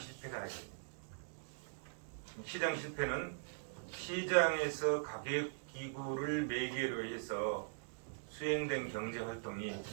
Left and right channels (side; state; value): left; silent; digital silence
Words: 아니에요. 시장 실패는 시장에서 가격 기구를 매개로 해서 수행된 경제 활동이